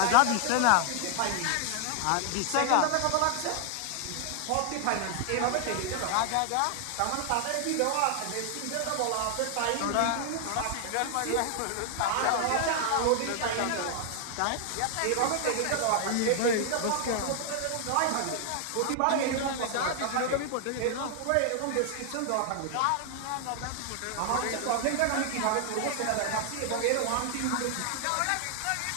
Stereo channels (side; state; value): both; different; correlation 0.00